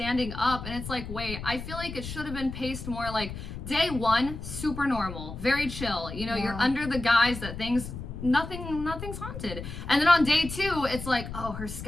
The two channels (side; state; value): left; noise; rumble, 9 dB below the sound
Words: up, and it's like, wait, I feel like it should have been paced more, like, day one, super normal, very chill. You know, you're under the guise that nothing's haunted. And then on day two, it's like, oh, her